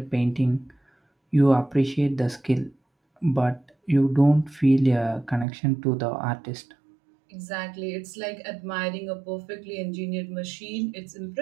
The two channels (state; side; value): drops out; left; at 5.5 s